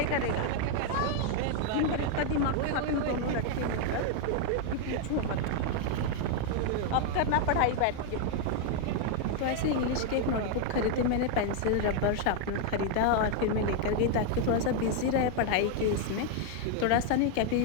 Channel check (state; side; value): different; both; correlation 0.00